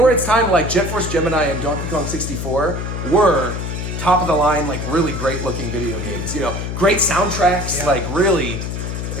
its time, like Jet Force Gemini and Donkey Kong 64 were top of the line, like really great looking video games. You know, great soundtracks, like really,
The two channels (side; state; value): left; noise; hum, 4 dB below the sound